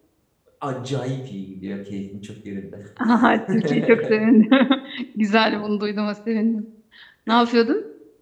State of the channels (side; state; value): both; identical; correlation 1.00